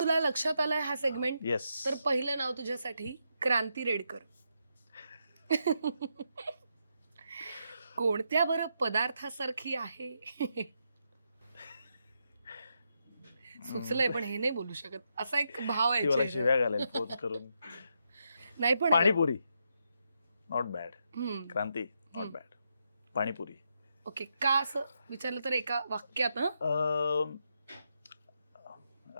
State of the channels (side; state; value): both; inverted; correlation -0.82